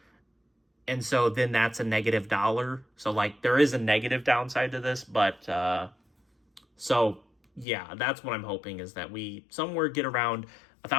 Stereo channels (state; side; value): drops out; right; at 7.7 s